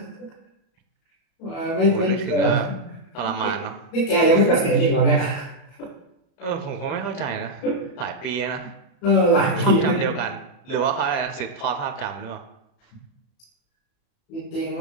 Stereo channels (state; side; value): late; right; 34 ms